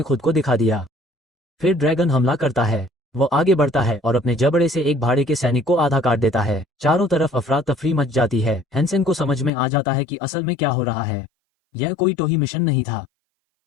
खुद को दिखा दिया। फिर ड्रैगन हमला करता है। वो आगे बढ़ता है और अपने जबड़े से एक भाड़े के सैनिक को आधा काट देता है। चारों तरफ अफरा तफरी मच जाती है। हेंसेन को समझ में आ जाता है कि असल में क्या हो रहा है। यह कोई टोही मिशन नहीं था,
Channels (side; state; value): right; drops out; at 9.5 s